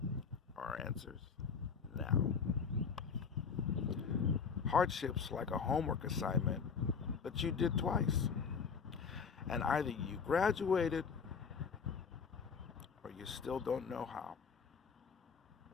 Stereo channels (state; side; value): quieter; right; 6.0 dB